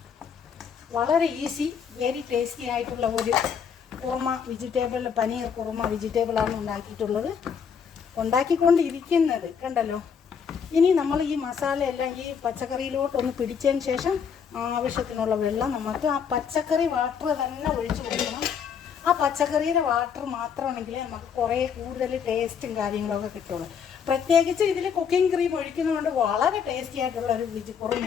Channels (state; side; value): quieter; right; 7.0 dB